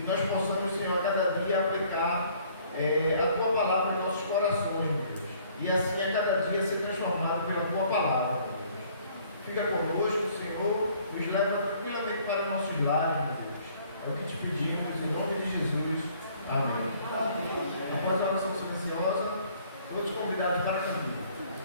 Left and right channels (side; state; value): both; inverted; correlation -0.59